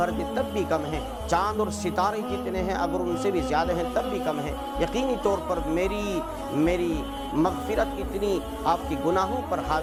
دے تب بھی کم ہیں، چاند اور ستارے جتنے ہیں اگر ان سے بھی زیادہ ہیں تب بھی کم ہیں۔ یقینی طور پر میری مغفرت اتنی آپ کے گناہوں پر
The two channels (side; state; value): both; identical; correlation 1.00